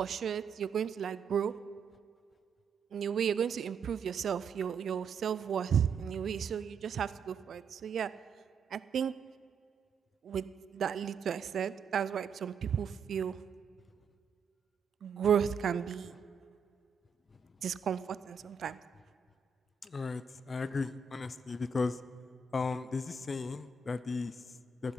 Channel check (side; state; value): left; quieter; 5.1 dB